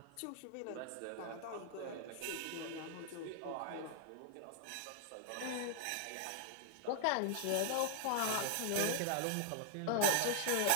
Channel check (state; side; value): different; both; correlation 0.00